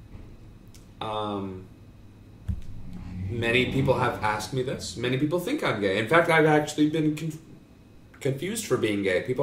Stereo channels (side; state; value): both; identical; correlation 1.00